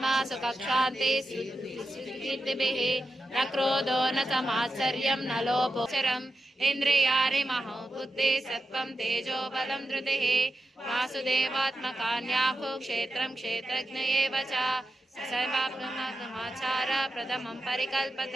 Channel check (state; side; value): normal; both; correlation 0.89